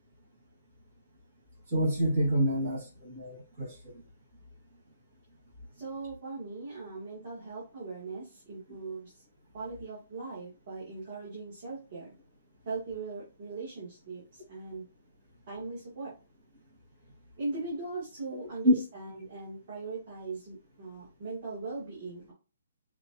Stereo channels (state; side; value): inverted; both; correlation -0.64